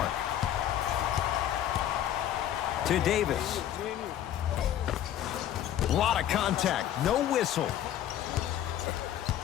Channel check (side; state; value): right; quieter; 11.3 dB